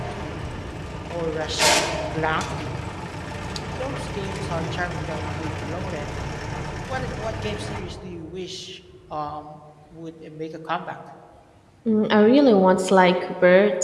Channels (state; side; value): identical; both; correlation 1.00